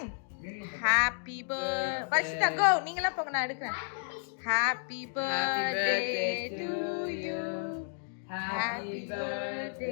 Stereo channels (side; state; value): right; silent; 57 dB below the other